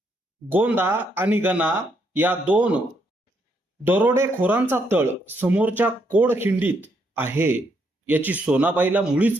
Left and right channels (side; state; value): both; normal; correlation 0.75